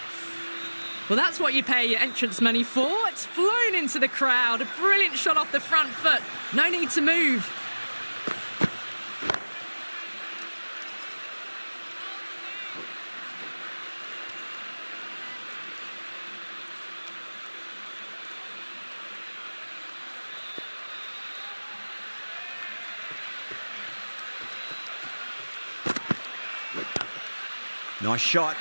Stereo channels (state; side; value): inverted; both; correlation -1.00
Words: Well, that's what you pay your entrance money for. It's flown into the crowd. A brilliant shot off the front foot. No need to move. Nice shot.